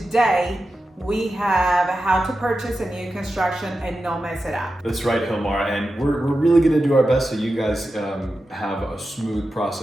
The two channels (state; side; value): normal; both; correlation 0.91